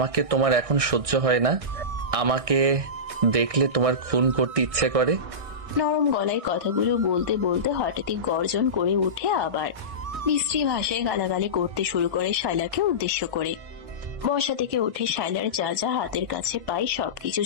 তোমার এখন সহ্য হয় না, আমাকে দেখলে তোমার খুন করতে ইচ্ছে করে। নরম গলায় কথাগুলো বলতে বলতে হঠাৎই গর্জন করে উঠে আবার মিস্ত্রি ভাষায় গালাগালি করতে শুরু করে শায়লাকে উদ্দেশ্য করে। বসা থেকে উঠে শায়লার যা যা হাতের কাছে পায় সবকিছু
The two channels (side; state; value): left; late; 1.6 ms